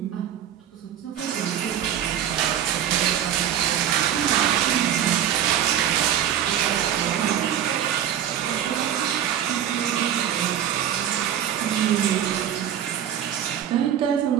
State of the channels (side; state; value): left; quieter; 10.1 dB